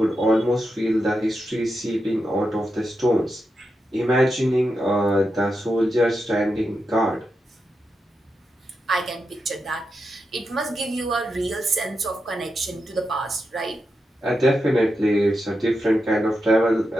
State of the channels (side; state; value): both; normal; correlation 0.87